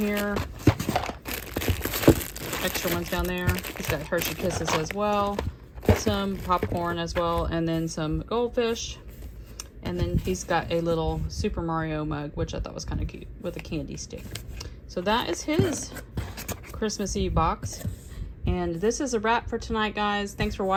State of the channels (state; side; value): identical; both; correlation 1.00